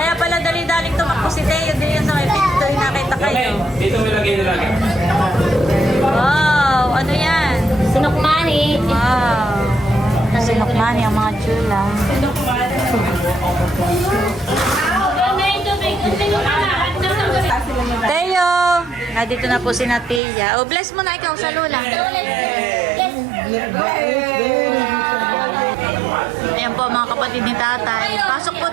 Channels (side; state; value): left; drops out; at 20.2 s